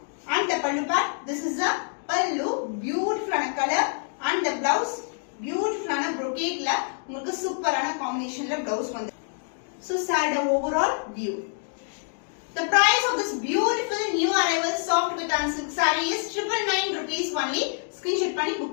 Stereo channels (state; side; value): silent; right; 61 dB below the other